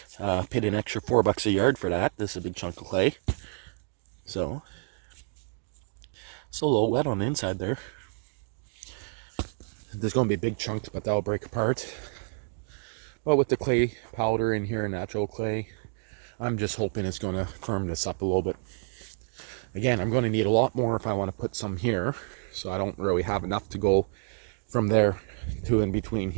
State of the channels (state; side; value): silent; left; digital silence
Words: Paid an extra $4 a yard for that. This is a big chunk of clay. So it's a little wet on the inside there. There's going to be big chunks, but that'll break apart. But with the clay powder in here, natural clay, I'm just hoping it's going to firm this up a little bit. Again, I'm going to need a lot more if I want to put some here. So I don't really have enough to go from there to in between